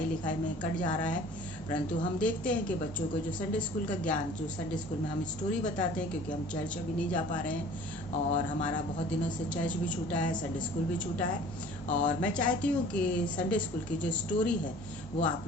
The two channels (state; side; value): normal; both; correlation 0.48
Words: लिखाई में कट जा रहा है। परंतु हम देखते हैं कि बच्चों को जो संडे स्कूल का ज्ञान, जो संडे स्कूल में हम स्टोरी बताते हैं, क्योंकि हम चर्च अभी नहीं जा पा रहे हैं और हमारा बहुत दिनों से चर्च भी छूटा है, संडे स्कूल भी छूटा है। और मैं चाहती हूँ कि संडे स्कूल की जो स्टोरी है वो